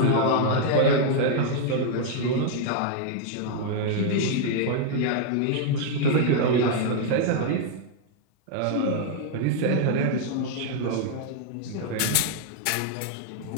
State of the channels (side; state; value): both; different; correlation 0.00